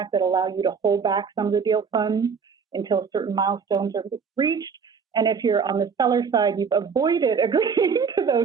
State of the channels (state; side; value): quieter; left; 6.0 dB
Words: that allow you to hold back some of the deal funds until certain milestones are reached. And if you're on the seller side, you've avoided agreeing to